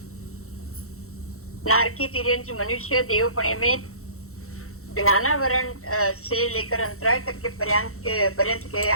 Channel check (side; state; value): right; late; 0.63 ms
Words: नारकी, तिर्यंच, मनुष्य देवपणे में ज्ञानावरण से लेकर अंतराय तक के पर्यंत के